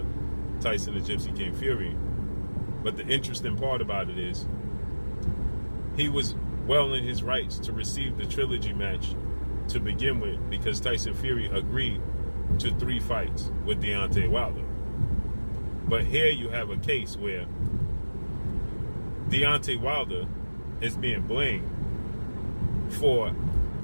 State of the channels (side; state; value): both; inverted; correlation -1.00